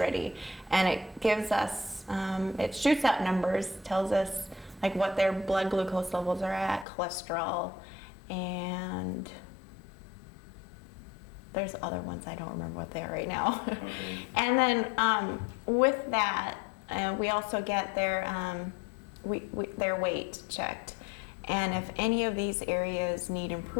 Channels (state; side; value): drops out; right; at 6.9 s